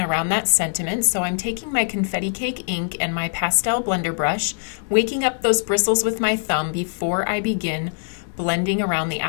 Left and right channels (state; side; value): silent; right; 56 dB below the other